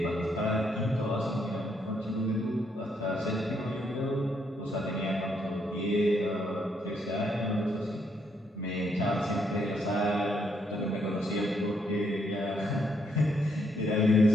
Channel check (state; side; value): normal; both; correlation 0.74